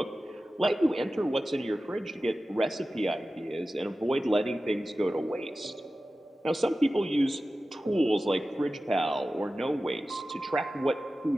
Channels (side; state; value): both; normal; correlation 0.95